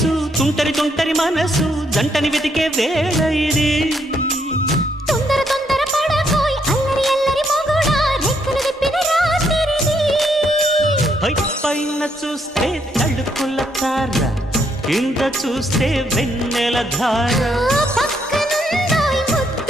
తుంటరి తుంటరి మనసు జంటని వెతికే వేళ ఇది తొందర తొందర పడకోయ్ అల్లరి అల్లరి మొగుడా రెక్కలు విప్పిన రాత్రిది పైన చూస్తే తడుకుల తార కింద చూస్తే వెన్నెల ధార పక్కనుందోయ్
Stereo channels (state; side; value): normal; both; correlation 0.74